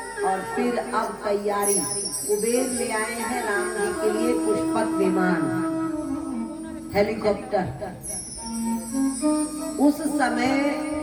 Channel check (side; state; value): both; identical; correlation 1.00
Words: और फिर अब तैयारी कुबेर ले आए हैं राम जी के लिए पुष्पक विमान, हेलीकॉप्टर। उस समय